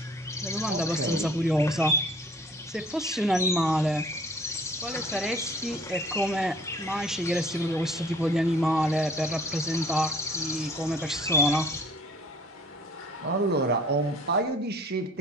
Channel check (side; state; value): both; normal; correlation 0.53